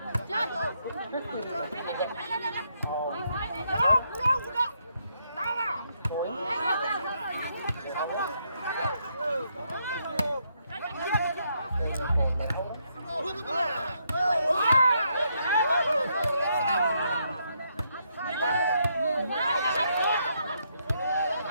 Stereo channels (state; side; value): inverted; both; correlation -0.76